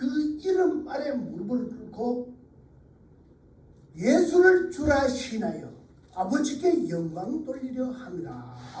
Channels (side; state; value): both; identical; correlation 1.00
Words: 이름 아래 무릎을 꿇고 예수를 주라 신하여 아버지께 영광 돌리려 합니다.